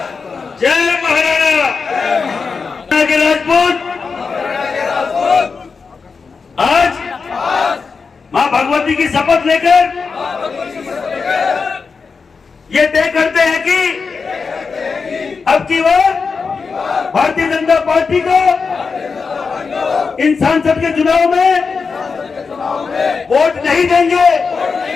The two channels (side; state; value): right; quieter; 5.0 dB